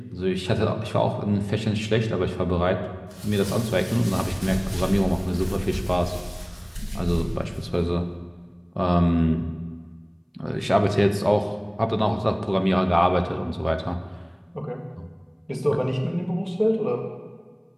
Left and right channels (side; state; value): both; identical; correlation 1.00